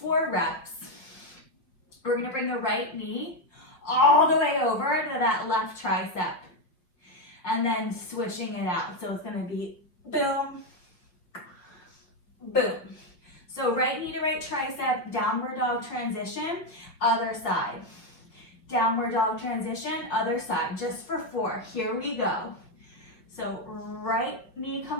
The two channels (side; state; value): right; late; 5.6 ms